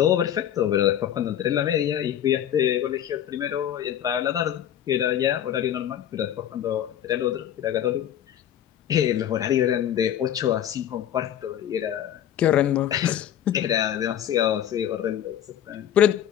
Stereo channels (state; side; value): quieter; right; 10.5 dB